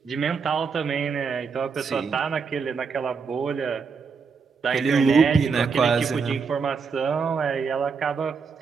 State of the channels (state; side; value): quieter; left; 5.4 dB